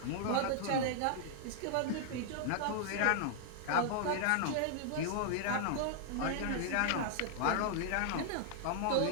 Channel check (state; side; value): different; both; correlation -0.01